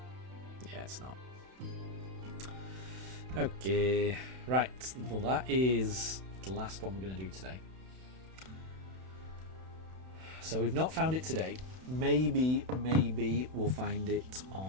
Yeah, it's not. Okay, right. Well, that is the last one we're going to do today. So we've not found it today. Maybe we'll find it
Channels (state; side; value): late; left; 32 ms